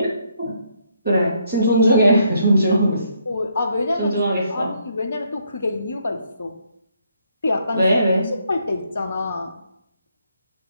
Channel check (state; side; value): inverted; both; correlation -0.72